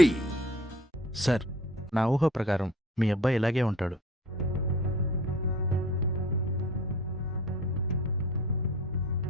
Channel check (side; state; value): both; normal; correlation 0.45